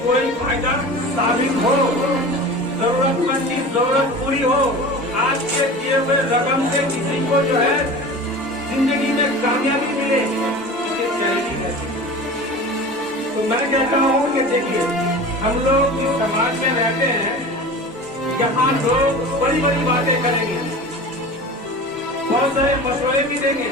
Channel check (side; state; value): both; normal; correlation 0.35